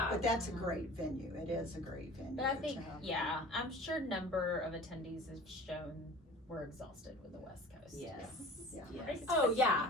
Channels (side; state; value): both; normal; correlation 0.42